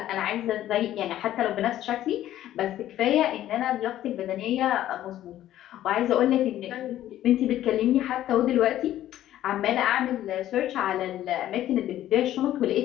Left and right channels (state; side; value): quieter; right; 12.9 dB